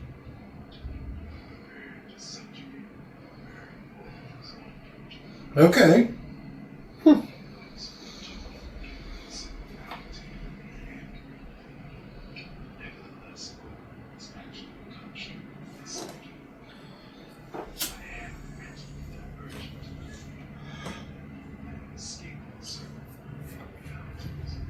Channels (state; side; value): identical; both; correlation 1.00